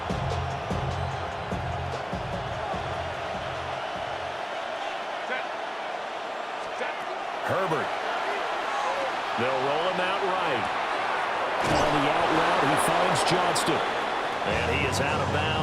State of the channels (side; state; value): both; identical; correlation 1.00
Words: Herbert. They'll roll him out right. On the out route, he finds Johnston. And he is out of